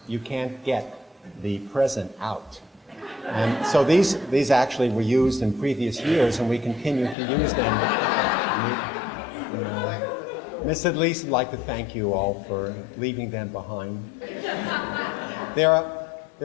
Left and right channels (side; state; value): right; drops out; at 7.2 s